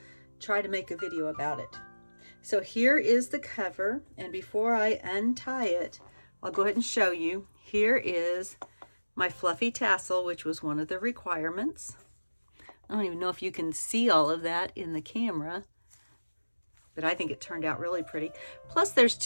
try to make a video about it. So here is the cover, and before I untie it, I'll go ahead and show you. Here is my fluffy tassel, which was one of the requirements. I don't even know if you can see all of that in the camera, but I think it turned out really pretty. Plus there's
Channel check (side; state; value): both; inverted; correlation -1.00